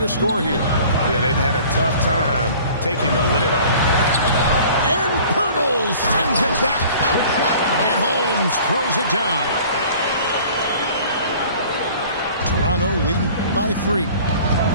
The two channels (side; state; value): both; inverted; correlation -0.48